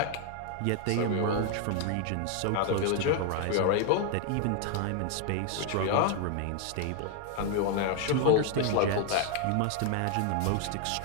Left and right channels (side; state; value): both; different; correlation 0.00